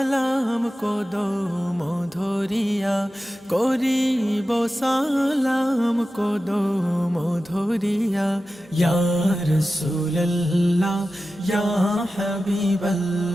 কদম ধরিয়া, করিব সালাম কদম ধরিয়া। ইয়া রাসূলুল্লাহ ইয়া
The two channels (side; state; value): both; normal; correlation 0.94